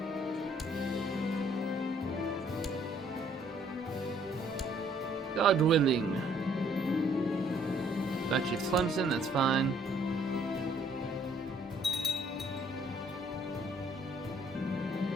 God willing. Got you Clemson, that's fine.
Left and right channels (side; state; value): both; normal; correlation 0.63